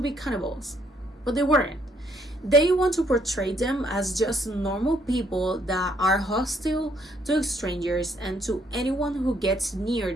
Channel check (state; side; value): normal; both; correlation 0.69